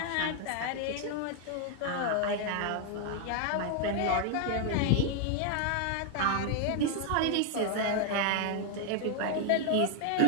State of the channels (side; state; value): both; different; correlation 0.00